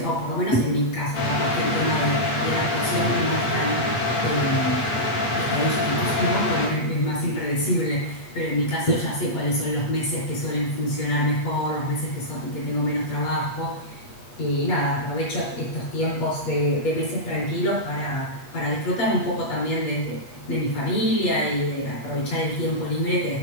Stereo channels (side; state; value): right; late; 8.4 ms